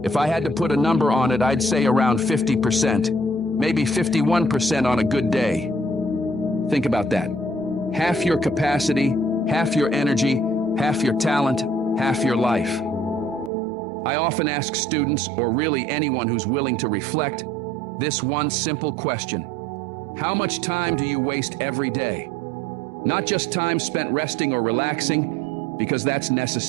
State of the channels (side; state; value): left; drops out; at 13.5 s